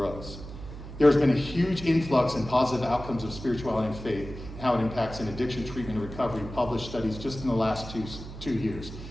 There's been a huge influx in positive outcomes of spirituality and faith, and how it impacts in addiction treatment and recovery, published studies just in the last two years.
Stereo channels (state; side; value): noise; right; hum, 12 dB below the sound